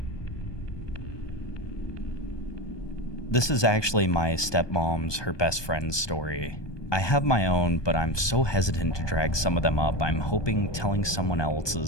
This is actually my stepmom's, her best friend's story. I have my own, but I'm so hesitant to drag some of them up. I'm hoping telling someone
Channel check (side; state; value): right; late; 1.2 ms